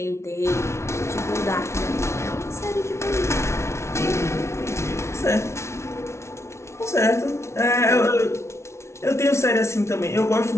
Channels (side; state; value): right; late; 0.13 ms